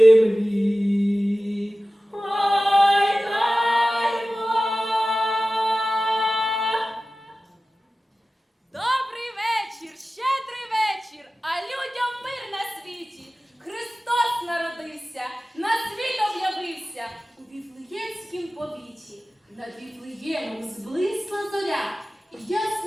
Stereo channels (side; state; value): both; normal; correlation 0.96